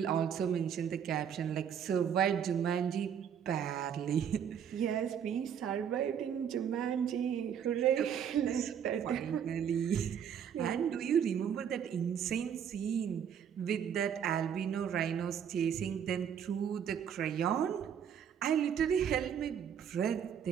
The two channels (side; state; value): left; quieter; 8.3 dB